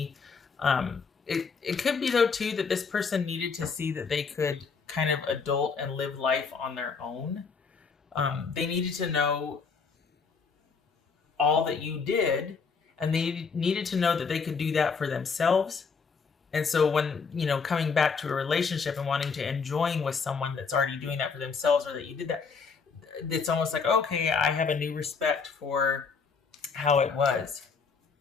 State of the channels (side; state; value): right; quieter; 5.3 dB